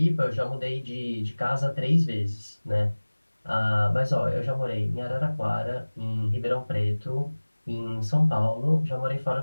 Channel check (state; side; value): inverted; both; correlation -1.00